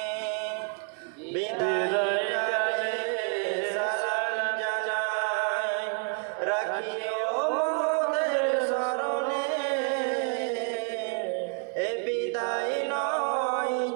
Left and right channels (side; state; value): left; quieter; 38.3 dB